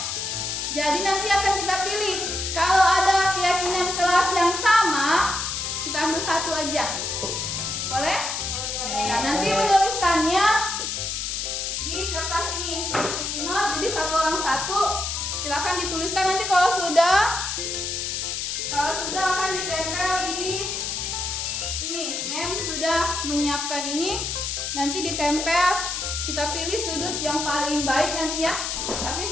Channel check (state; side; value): noise; left; hiss, 3 dB below the sound